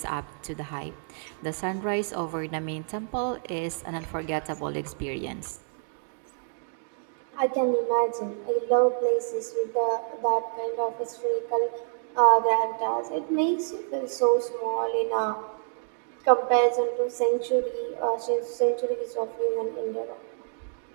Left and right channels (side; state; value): left; silent; 60 dB below the other